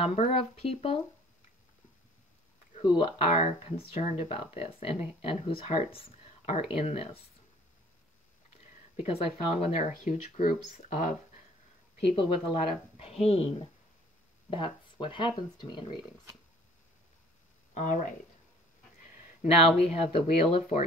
of people who are concerned about this and whose hearts are in this. Because I found when there are huge groups of people with a lot of pain, that's what happens to me in readings. All right. Now we have the Wheel of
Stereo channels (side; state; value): both; normal; correlation 0.54